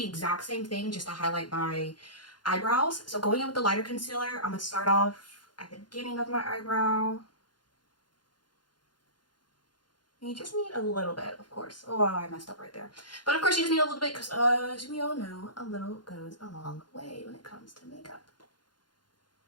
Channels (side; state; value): right; late; 0.71 ms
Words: the exact same thing just to highlight my eyebrows. So going in with the lighter concealer, I'm going to start off at the beginning of my eyebrow. You just need a little bit, of course. Oh, I messed up right there. But of course you just need a little bit because as we all know, a little goes a long way when it comes to makeup.